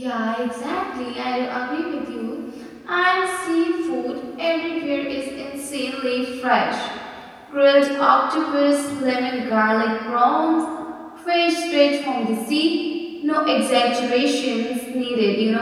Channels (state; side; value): identical; both; correlation 1.00